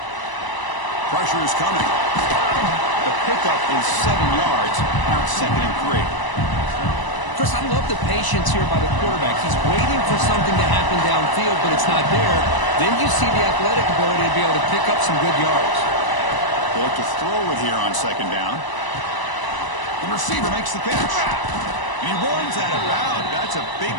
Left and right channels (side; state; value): right; late; 1.0 ms